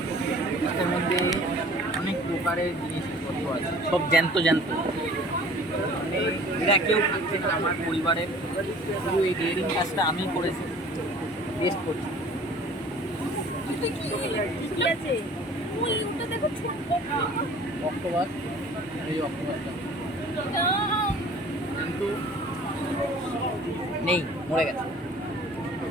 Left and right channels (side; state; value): both; normal; correlation 0.49